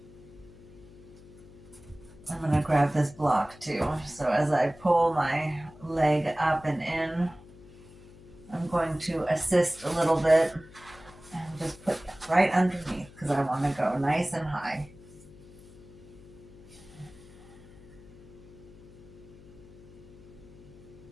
I'm going to grab this block too. So as I pull my leg up and in, I'm going to assist a little bit and just put that right underneath because I want to go nice and high.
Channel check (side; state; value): left; noise; hum, 20 dB below the sound